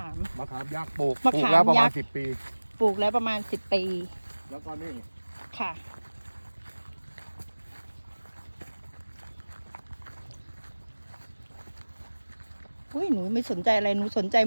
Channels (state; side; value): inverted; both; correlation -1.00